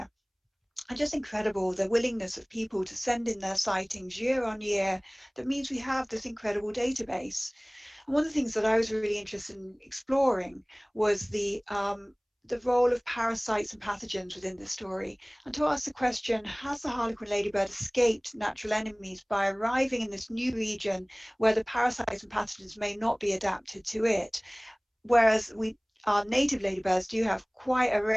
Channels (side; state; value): both; identical; correlation 1.00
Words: And just incredible, the willingness of people to send in their sightings year on year. That means we have this incredible database. And one of the things that I was really interested in exploring was the the role of parasites and pathogens within the story, and to ask the question, has the harlequin ladybird escaped natural enemies by arriving in this new region where the parasites and pathogens may not be adapted to it? Whereas our native ladybirds do have quite a